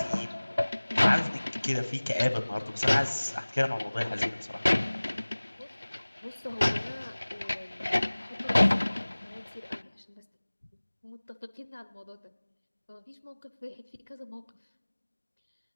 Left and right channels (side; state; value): both; inverted; correlation -1.00